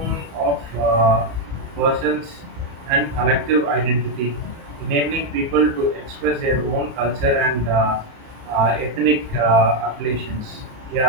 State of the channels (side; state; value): left; late; 31 ms